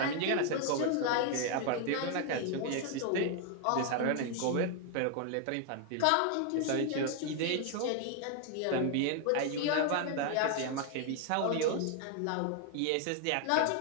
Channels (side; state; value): both; different; correlation 0.00